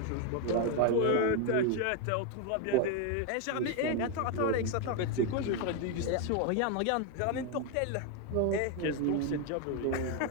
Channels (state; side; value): different; both; correlation 0.01